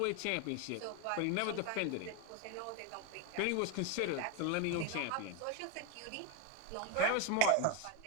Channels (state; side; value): different; both; correlation 0.02